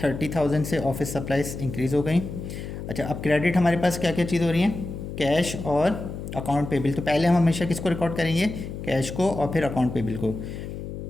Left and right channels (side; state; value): left; noise; hum, 8 dB below the sound